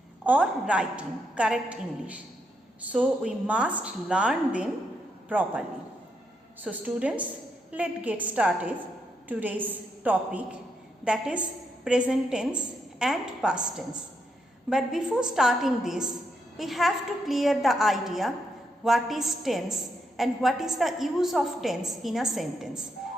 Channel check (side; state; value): both; normal; correlation 0.80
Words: or writing correct English. So we must learn them properly. So students, let's get started today's topic, that is present tense and past tense. But before starting this, we have to clear the idea what is tense and what is the use of tense in a sentence.